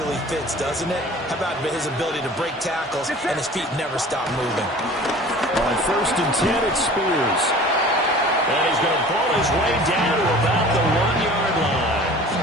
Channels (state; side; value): normal; both; correlation 0.44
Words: fits, doesn't it? How about his ability to break tackles and his feet never stop moving? On 1st and 10, it's Spears. And he's going to pull his way down to about the 1-yard line.